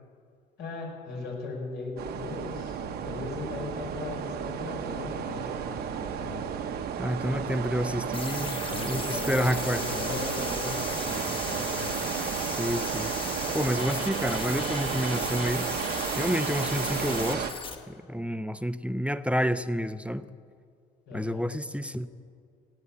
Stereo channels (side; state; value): both; normal; correlation 0.55